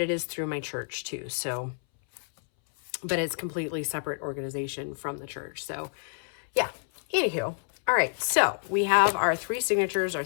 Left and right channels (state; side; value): silent; right; 59 dB below the other